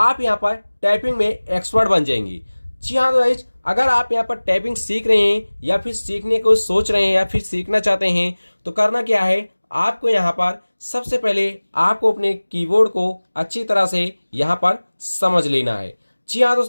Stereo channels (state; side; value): inverted; both; correlation -1.00